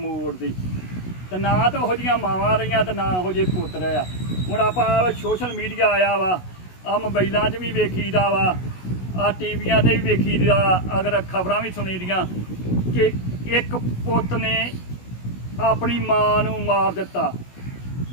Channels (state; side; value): late; right; 16 ms